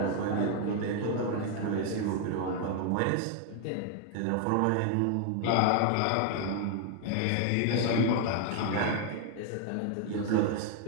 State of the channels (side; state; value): both; different; correlation 0.00